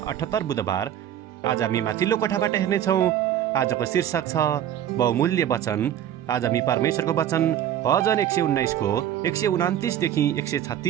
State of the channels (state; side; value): quieter; left; 10.8 dB